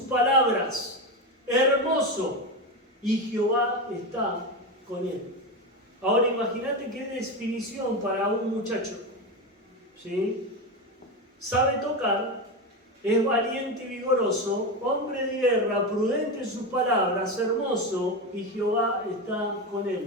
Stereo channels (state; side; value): normal; both; correlation 0.16